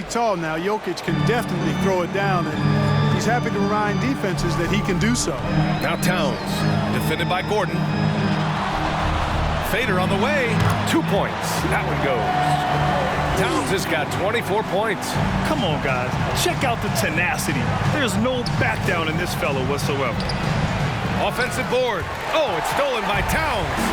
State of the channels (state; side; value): identical; both; correlation 1.00